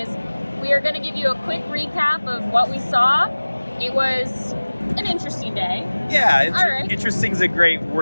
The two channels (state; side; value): inverted; both; correlation -1.00